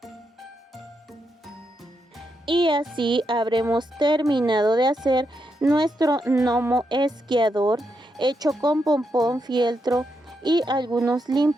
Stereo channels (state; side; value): normal; both; correlation 0.82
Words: Y así habremos terminado de hacer nuestro gnomo esquiador hecho con pompón, fieltro y algunos